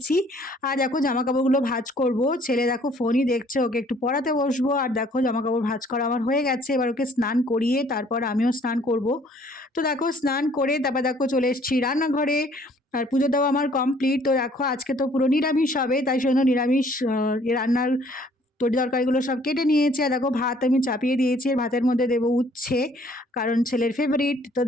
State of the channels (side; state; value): both; normal; correlation 0.59